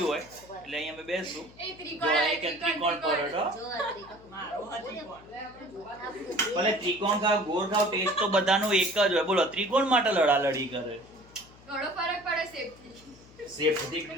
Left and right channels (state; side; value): noise; left; hum, 23 dB below the sound